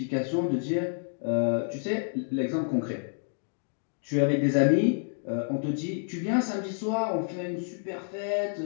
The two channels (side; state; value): right; silent; digital silence